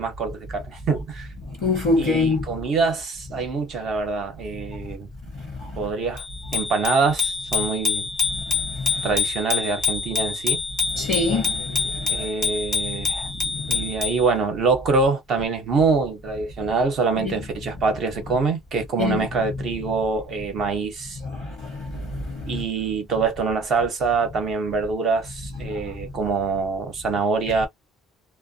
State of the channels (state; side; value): normal; both; correlation 0.48